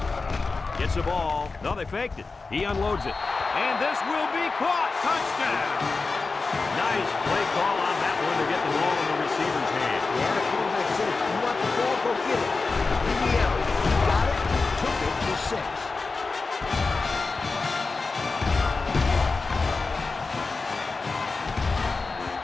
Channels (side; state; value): right; quieter; 4.0 dB